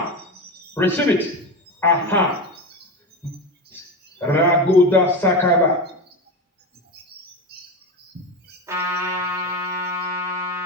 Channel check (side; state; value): both; normal; correlation 0.21